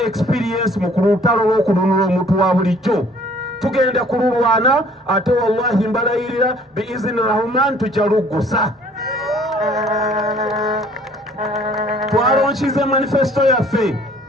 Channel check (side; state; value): both; normal; correlation 0.56